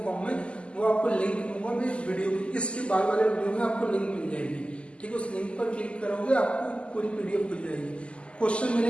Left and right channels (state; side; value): late; right; 0.054 ms